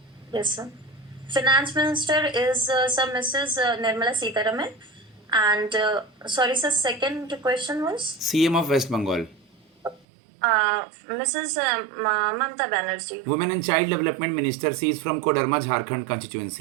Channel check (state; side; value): drops out; left; at 10.1 s